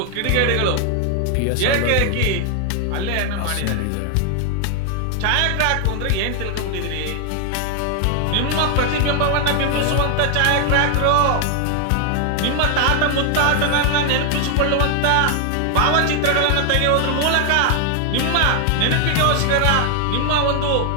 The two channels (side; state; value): both; different; correlation 0.00